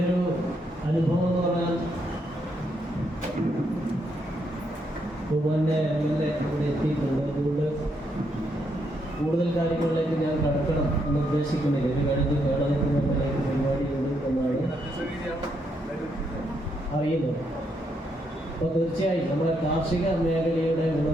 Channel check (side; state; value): both; normal; correlation 0.77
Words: ഒരു അനുഭവം എന്ന് പറഞ്ഞാൽ, ബഹുമാന്യ MLA ഇവിടെ എത്തിയിട്ടുണ്ട്. അതുകൊണ്ട് കൂടുതൽ കാര്യങ്ങളിലേക്ക് ഞാൻ കടക്കണം എന്ന് ഉദ്ദേശിക്കുന്നില്ല. ഇത് കഴിഞ്ഞ് കേരളത്തിലേക്ക് പരിപാടിയുണ്ട് എന്നാണ് അറിയുന്നത്. അപ്പോൾ തീർച്ചയായും നമ്മുടെ കാർഷിക മേഖലയുടെ